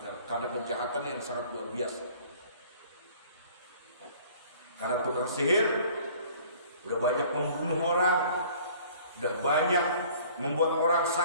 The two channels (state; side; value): inverted; both; correlation -0.52